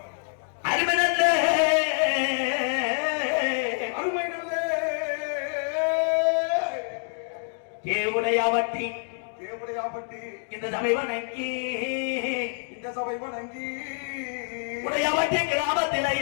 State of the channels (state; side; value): silent; right; 60 dB below the other